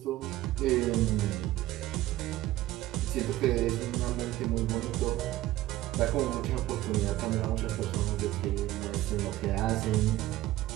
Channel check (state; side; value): quieter; left; 15.5 dB